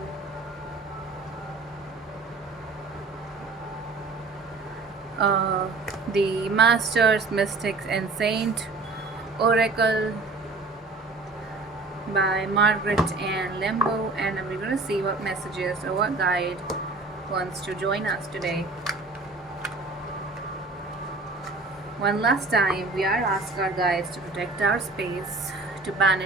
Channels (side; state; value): left; quieter; 3.5 dB